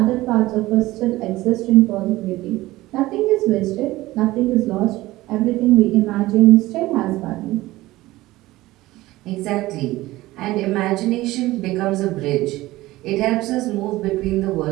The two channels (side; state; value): left; quieter; 17.9 dB